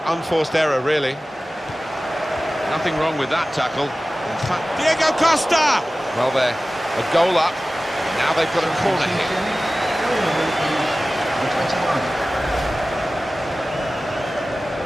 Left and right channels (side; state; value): both; normal; correlation 0.96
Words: unforced error really. Nothing wrong with that tackle. In fact, Diego Costa! Well, they're a goal up. Now they've got a corner here.